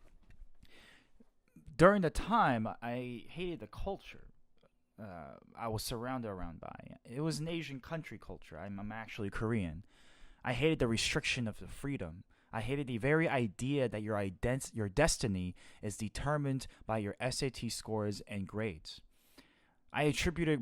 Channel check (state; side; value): identical; both; correlation 1.00